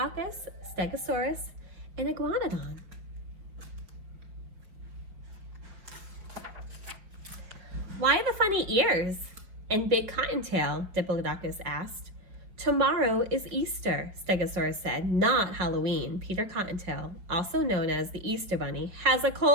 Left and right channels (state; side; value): late; left; 5.0 ms